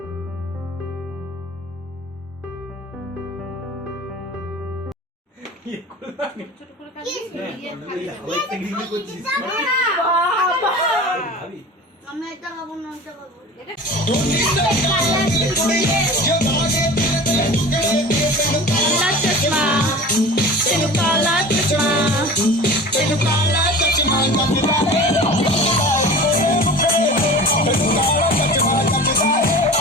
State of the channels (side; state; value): both; normal; correlation 0.37